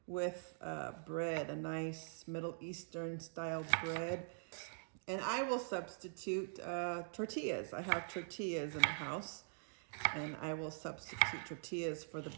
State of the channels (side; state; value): left; silent; digital silence